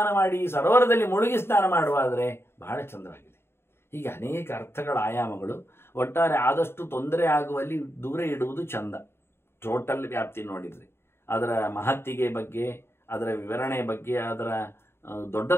ಮಾಡಿ, ಸರೋವರದಲ್ಲಿ ಮುಳುಗಿ ಸ್ನಾನ ಮಾಡುವಾದ್ರೆ ಬಹಳ ಚಂದವಾಗಿದೆ. ಹೀಗೆ ಅನೇಕ ಅರ್ಥಗಳ ಆಯಾಮಗಳು. ಒಟ್ಟಾರೆ ಆದಷ್ಟು ತೊಂದರೆ ಆಗುವಲ್ಲಿ ದೂರ ಇಡುವುದು ಚಂದ. ಟೋಟಲ್ ವ್ಯಾಪ್ತಿ ನೋಡಿದ್ರೆ ಅದರ ಮಹತ್ತಿಗೆ ಬಗ್ಗೆ, ಅದರ ವಿವರಣೆ ಬಗ್ಗೆ, ಅದರ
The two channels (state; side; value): late; right; 0.12 ms